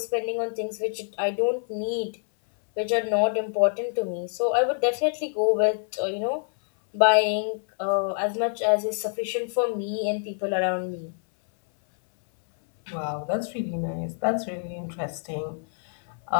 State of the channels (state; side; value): silent; right; 59 dB below the other